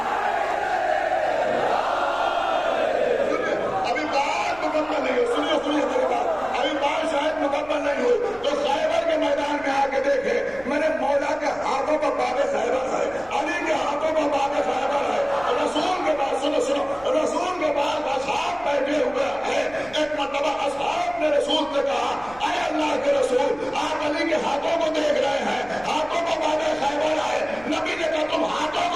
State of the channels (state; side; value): noise; right; hum, 23 dB below the sound